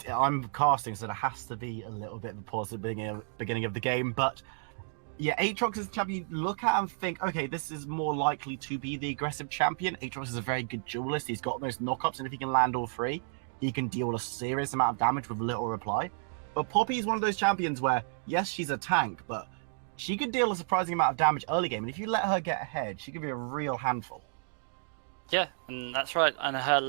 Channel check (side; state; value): left; silent; digital silence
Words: I'm casting, so there has to be a little bit of a pause at the beginning of the game. But yeah, Aatrox is the champion you look at and think, okay, this is more likely to be the aggressive champion. Aatrox is a very good duelist. He's got those knockups, and if he can land all three, he can deal a serious amount of damage with little reply. But Poppy is one of those champions where, yes, she's a tank, but she could deal a surprising amount of damage early game, and if you let her get ahead, she could be a real handful. Yeah, and that's right. And her